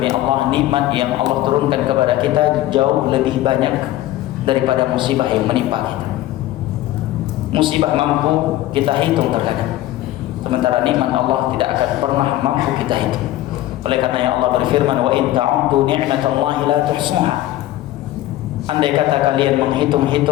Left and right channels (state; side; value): quieter; right; 14.9 dB